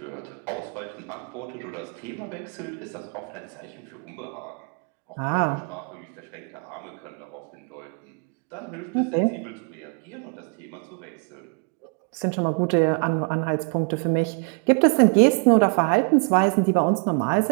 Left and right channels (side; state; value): left; quieter; 39.5 dB